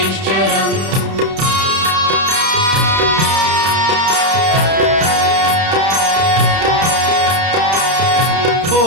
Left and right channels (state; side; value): late; left; 31 ms